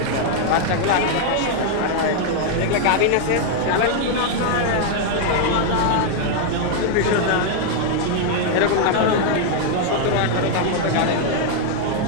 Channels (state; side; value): different; both; correlation 0.00